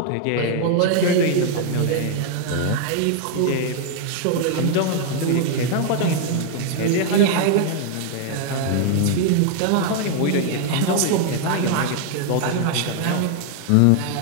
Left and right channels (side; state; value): both; different; correlation 0.00